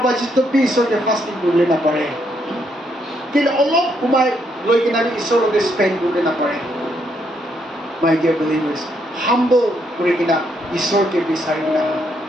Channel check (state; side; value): normal; both; correlation 0.75